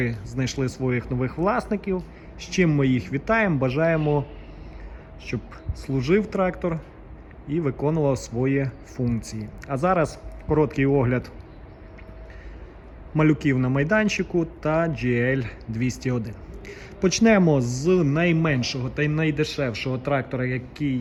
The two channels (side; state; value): both; identical; correlation 1.00